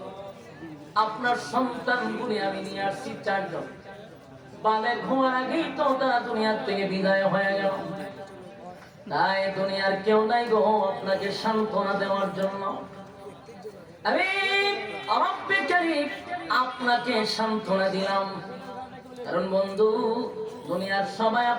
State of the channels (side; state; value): both; identical; correlation 1.00